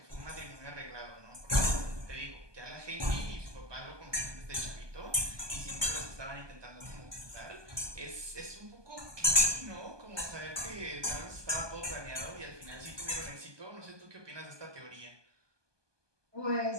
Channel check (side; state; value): left; late; 1.2 ms